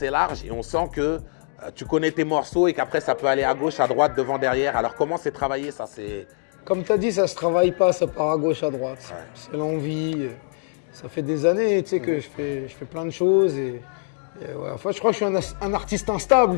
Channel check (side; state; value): right; silent; 63 dB below the other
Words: large et on sent que tu connais tes morceaux et qu'après ça peut aller à gauche, à droite, devant, derrière. Alors comment c'est travaillé ça? Comme tu as dit, ça se travaille pas, ça part à gauche, à droite. Ouais. C'est l'envie. Ça fait des années tu sais, que je fais plein de choses. Et ouais, enfin, je crois que je suis un artiste